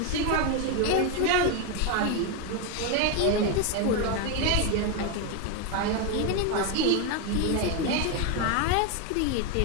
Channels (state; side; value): different; both; correlation 0.02